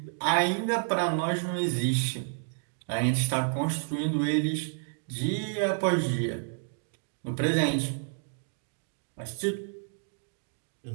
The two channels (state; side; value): silent; left; 58 dB below the other